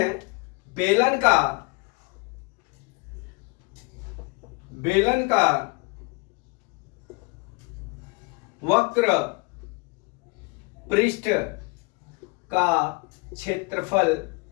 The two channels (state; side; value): quieter; right; 27.5 dB